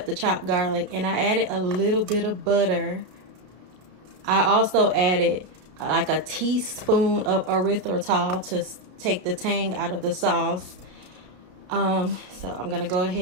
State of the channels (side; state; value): left; late; 33 ms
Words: the chopped garlic, and I added a little bit of butter. I also added like a teaspoon of erythritol to take the tang out of the sauce. So I'm gonna go